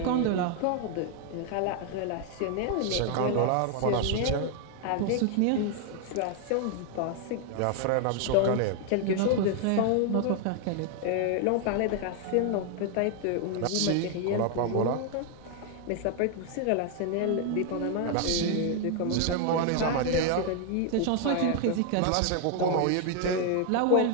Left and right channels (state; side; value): different; both; correlation 0.00